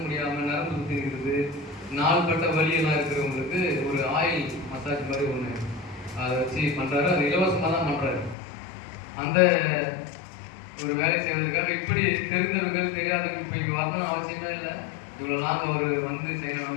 முடியாமல் நரம்பு சுற்றி இருக்குது, நாள்பட்ட வலியெல்லாம் இருக்கிறவங்களுக்கு ஒரு ஆயில் மசாஜ் மாதிரி ஒன்று அதை வச்சு பண்ணுறாரு. அது இலவசமாக தான் பண்ணுறாரு. அந்த ஒரு வேலை செய்வதற்காக இப்படி தெரிந்தவர்கள் தெரியாதவர்கள் இப்போ இங்கே வரணும்னு அவசியமே இல்லை. இவ்வளோ நாங்கள் அவர் வந்து செய்யணும்னு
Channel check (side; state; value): right; drops out; at 8.3 s